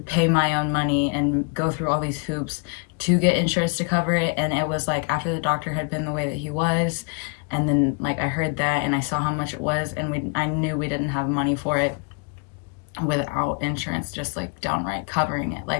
my own money and go through all these hoops to get insurance to cover it. And it was like after the doctor had been the way that he was, and then like I heard that and I saw how much it was, and I knew we didn't have money for it without insurance just like downright covering it.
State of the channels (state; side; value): quieter; right; 34.4 dB